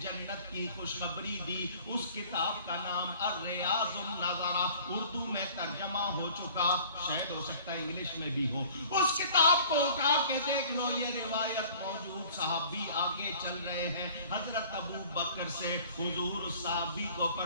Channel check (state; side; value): inverted; both; correlation -0.49